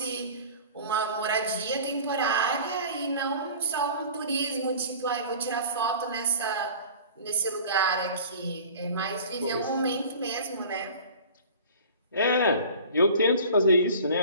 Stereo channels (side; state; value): both; inverted; correlation -0.42